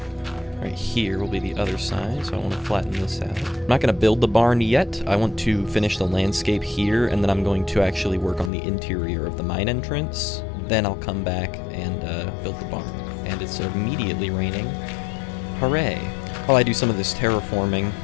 Right here will be the other side, so I want to flatten this out. I'm not going to build the barn yet. I want to finish the landscape here, and then I'm going to actually work on the interior of the mine entrance. Then I'll come back and build the barn. And it's immediately raining. Hooray! While I do some of this terraforming,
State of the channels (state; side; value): drops out; right; at 8.5 s